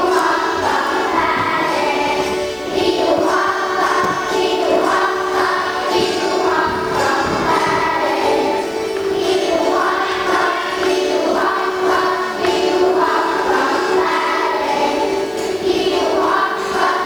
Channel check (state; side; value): noise; right; hiss, 28 dB below the sound